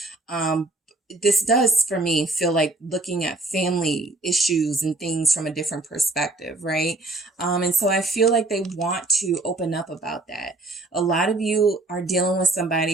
This does, for me, feel like looking at family issues and things from a different perspective, right? And so I feel like they want to open up about that. A lot of you are dealing with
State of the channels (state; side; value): quieter; left; 3.0 dB